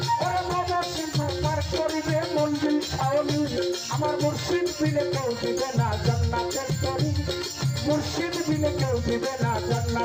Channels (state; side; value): identical; both; correlation 1.00